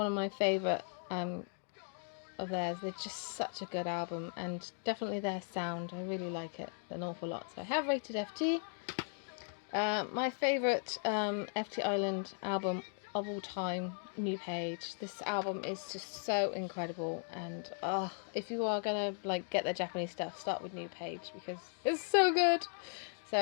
of my favourite of theirs. They're just such a good album, and definitely their sound. I really like it an awful lot. So I have rated FT. My favourite FT Island album of all time, New Page. This album is just so incredible, and if you are gonna like get the Japanese stuff, start with New Page because it's so good.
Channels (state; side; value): silent; right; 53 dB below the other